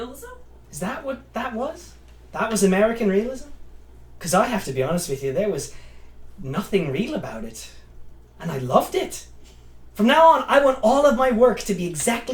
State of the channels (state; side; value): identical; both; correlation 1.00